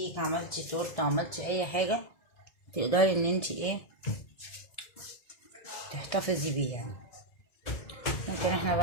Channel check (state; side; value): late; right; 1.7 ms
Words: عملتي تورته عملتي اي حاجه تقدري ان انت ايه تحتفظي بيه يعني. ممكن احنا